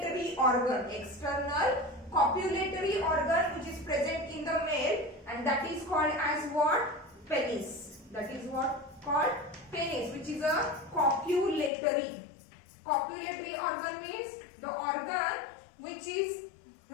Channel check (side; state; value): right; drops out; at 11.7 s